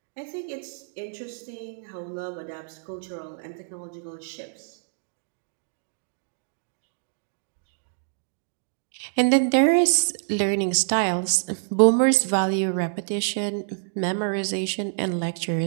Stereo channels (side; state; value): left; silent; digital silence